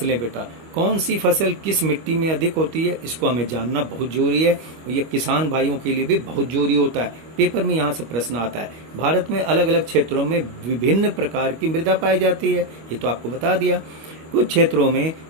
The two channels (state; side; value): late; left; 25 ms